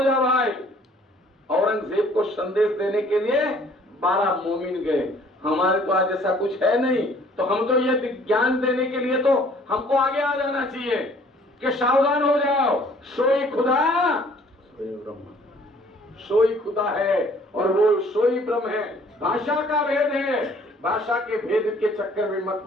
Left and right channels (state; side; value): normal; both; correlation 0.57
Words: जा भाई। औरंगजेब को संदेश देने के लिए 12 मोमिन गए। हमारे तो आज ऐसा कुछ है नहीं, तो हम तो ये ज्ञान देने के लिए तो हमको आगे आ जाना चाहिए कि सावधान हो जाओ, सोई खुदा सोई खुदा है और वो सोई ब्रह्म है। भाषा का भेद है, भाषा के भेद के चक्कर में मत